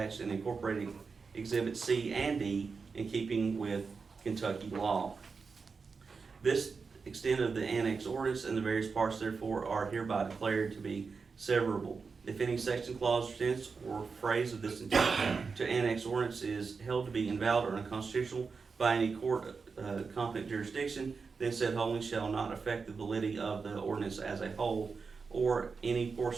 and incorporated exhibits C and D, in keeping with Kentucky law. This extent of the annex ordinance and the various parts therefore are hereby declared to be severable. If any section, clause, sentence, or phrase of this intent to annex ordinance is held to be invalid or unconstitutional by any court competent jurisdiction, then said holding shall not affect the validity of the ordinance as a whole, or any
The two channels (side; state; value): left; quieter; 5.0 dB